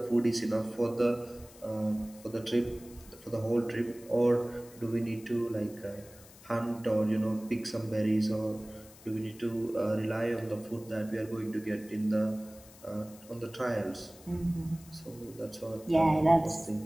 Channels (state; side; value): noise; left; hiss, 22 dB below the sound